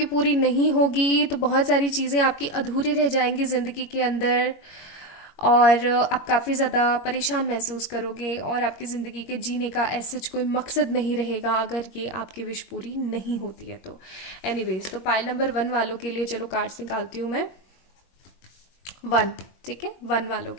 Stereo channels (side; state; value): right; late; 22 ms